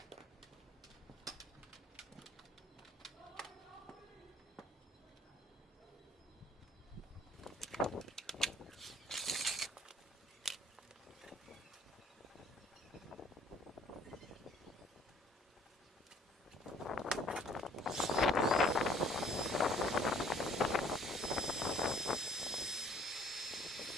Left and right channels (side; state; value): both; normal; correlation 0.57